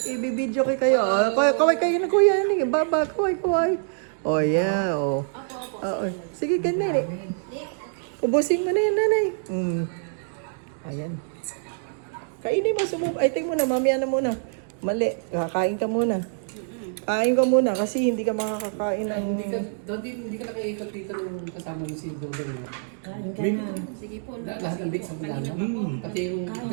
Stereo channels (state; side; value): silent; left; digital silence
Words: i-video kayo. Kaway kayo ng Kuya Ernie. Baba, kaway. O yeah, o. Sige, ganun. Ubusin mo na yan, nanay. Ayan. Kainin mo, subukan mo na, mamaya na muna. Mali, kakain ka muna. Kain ka muna kasi hindi ka makakakain ng... Hindi ka nakikot dito nung kasama mo si Dodong. Kain ka na. Sige po, lahat ng big sa Milano. Pati yung